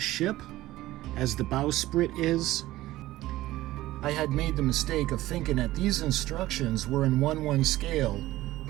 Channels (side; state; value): left; quieter; 16.4 dB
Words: ship, as the bowsprit is. I had made the mistake of thinking that these instructions were in 1/1 scale,